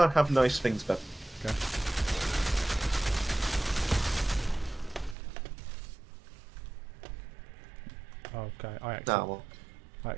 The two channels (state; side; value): drops out; left; at 5.2 s